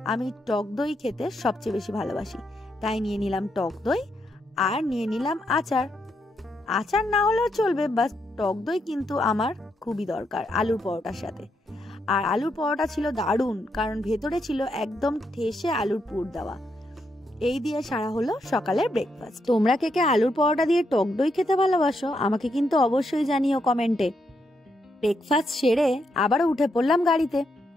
আমি টক দই খেতে সবচেয়ে বেশি ভালোবাসি, তাই নিয়ে নিলাম টক দই, আর নিয়ে নিলাম আচার। আচার না হলেও চলবে, বাস টক দই কিন্তু আমার খুবই দরকার আলুর পরোটার সাথে। আর আলুর পরোটা ছিল দারুণ, কারণ ভেতরে ছিল একদম ঠেসে আলুর পুর দেওয়া। এই দিয়ে সারা হলো সকালের ব্রেকফাস্ট। তোমরা কে কে আলুর পরোটা দিয়ে টক দই খেতে ভালোবাসো আমাকে কিন্তু অবশ্যই জানিও কমেন্টে। ব্রেকফাস্ট সেরে আবারও উঠে পড়লাম গাড়িতে।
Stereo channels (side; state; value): both; normal; correlation 0.80